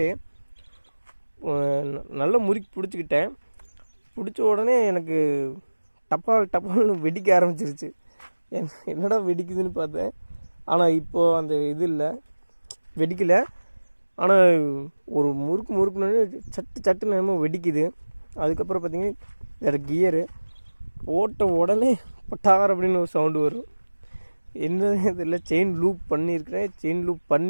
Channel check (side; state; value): both; inverted; correlation -1.00